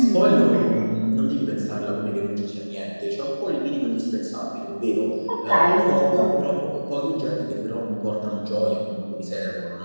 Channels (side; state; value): both; inverted; correlation -1.00